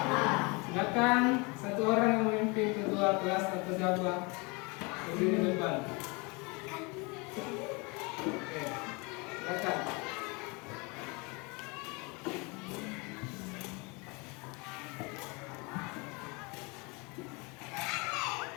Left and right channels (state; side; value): quieter; right; 28.6 dB